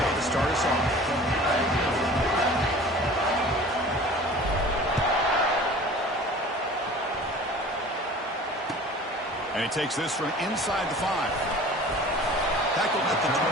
to start us off. And he takes this from inside the 5. Tackled at the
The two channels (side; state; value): both; normal; correlation 0.43